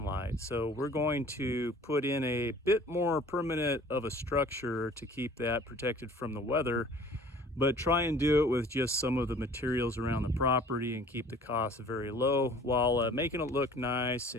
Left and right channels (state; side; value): normal; both; correlation 0.49